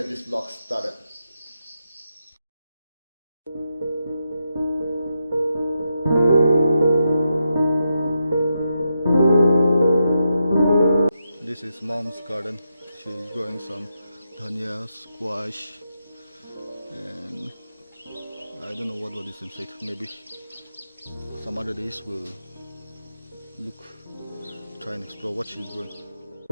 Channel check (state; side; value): inverted; both; correlation -0.85